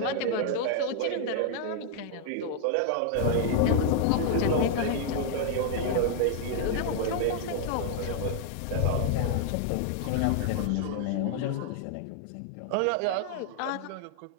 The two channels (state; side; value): different; both; correlation 0.00